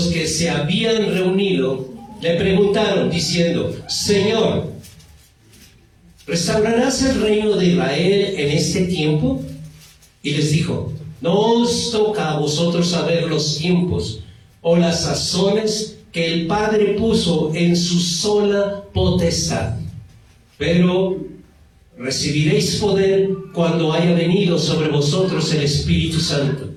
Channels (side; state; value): both; identical; correlation 1.00